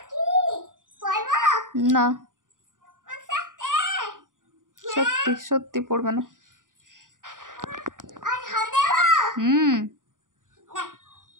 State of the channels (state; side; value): late; left; 0.88 ms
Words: পড়বো না, সত্যি সত্যি পড়বে না। হুম